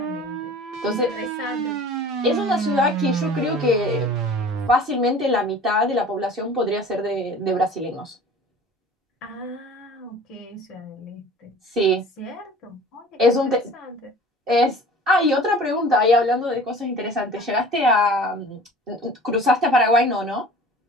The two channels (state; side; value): normal; both; correlation 0.44